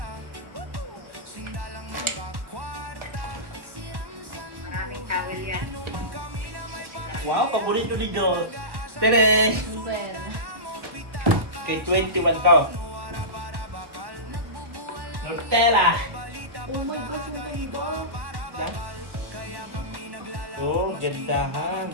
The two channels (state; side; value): late; left; 1.1 ms